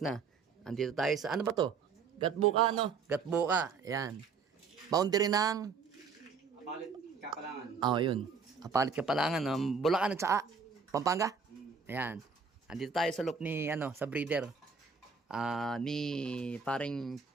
Andito tayo sa ano ba to? Gatbuka Gatbuka. Yan. Boundary ng Apalit Kapalangan. yun. Apalit Kapalangan, Bulacan at saka Pampanga. Ayan. Andito tayo sa loop ni sa breeder. Ni paring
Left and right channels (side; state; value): left; quieter; 5.4 dB